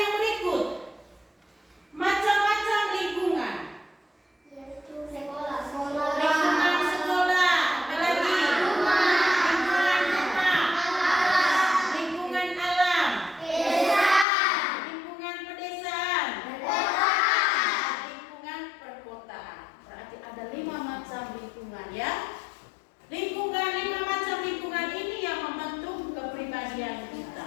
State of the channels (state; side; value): drops out; right; at 14.2 s